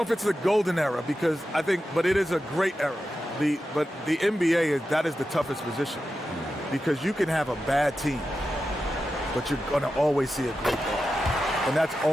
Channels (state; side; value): normal; both; correlation 0.91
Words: if it's the golden era but it is a great era. But the NBA that is the toughest position because you can have a bad team, but you're going to always see a great guard. And that's